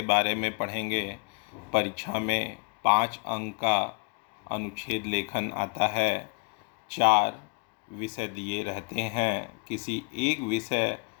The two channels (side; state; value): right; quieter; 36.1 dB